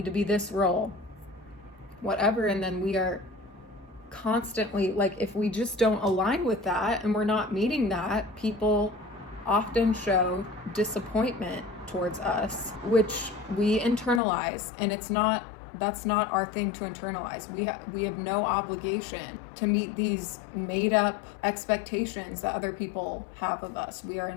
to be this role, whatever, and then we are constantly, like, if we just don't align with that and we're not meeting that, people often show disappointment towards us, which we internalize, and that's not our thing to internalize. We have no obligation to meet these made up expectations that other people have of us. We are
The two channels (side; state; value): right; drops out; at 14.2 s